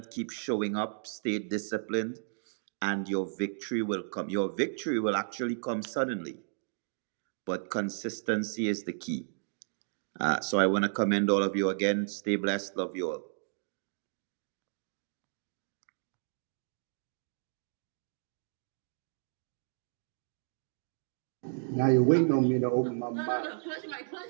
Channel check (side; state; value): left; silent; digital silence